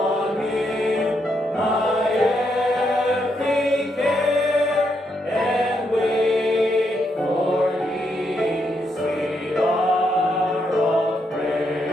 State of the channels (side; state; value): both; normal; correlation 0.79